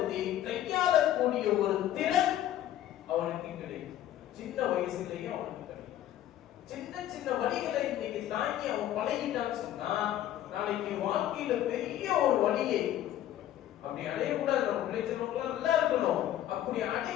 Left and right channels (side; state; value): right; quieter; 12.3 dB